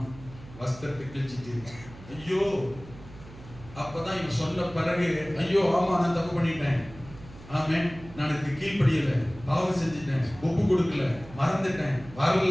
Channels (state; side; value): noise; right; hum, 18 dB below the sound